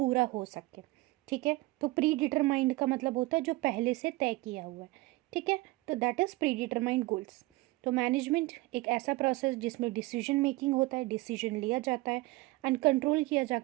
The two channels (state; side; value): quieter; left; 20.9 dB